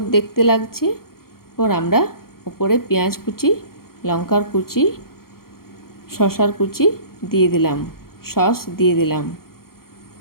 দেখতে লাগছে। এরপর আমরা উপরে পেঁয়াজ কুচি লঙ্কার কুচি শসার কুচি দিয়ে দিলাম, সস দিয়ে দিলাম।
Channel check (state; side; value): late; right; 0.93 ms